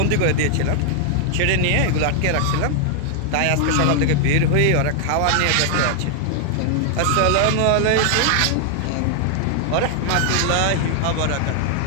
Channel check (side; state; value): both; different; correlation 0.00